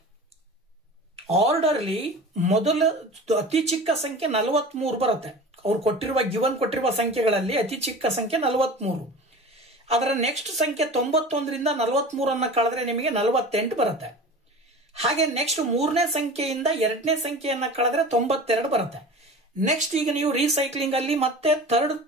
ಆರ್ಡರ್ಲಿ ಮೊದಲ ಅತಿ ಚಿಕ್ಕ ಸಂಖ್ಯೆ 43 ಬರುತ್ತೆ. ಅವ್ರು ಗಿವನ್ ಕೊಟ್ಟಿರುವ ಸಂಖ್ಯೆಗಳಲ್ಲಿ ಅತಿ ಚಿಕ್ಕ ಸಂಖ್ಯೆ 43. ಅದರ ನೆಕ್ಸ್ಟ್ ಸಂಖ್ಯೆ 91ರಿಂದ 43 ಕಳೆದ್ರೆ ನಿಮಗೆ 48 ಬರುತ್ತೆ. ಹಾಗೆ ನೆಕ್ಸ್ಟ್ 3ನೇ ಸಂಖ್ಯೆಯಿಂದ 2ನೇ ಸಂಖ್ಯೆಯನ್ನ ಕಳೆದ್ರೆ 92 ಬರುತ್ತೆ. ನೆಕ್ಸ್ಟ್ ಈಗ ನೀವು ರೀಸೈಕ್ಲಿಂಗ್ ಅಲ್ಲಿ ಮತ್ತೆ ಥರ್ಡ್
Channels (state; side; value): normal; both; correlation 0.37